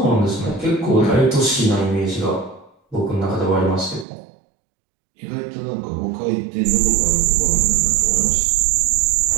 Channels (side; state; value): left; drops out; at 4.0 s